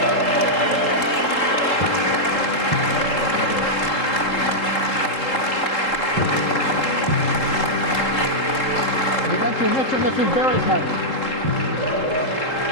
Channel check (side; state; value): right; late; 3.7 ms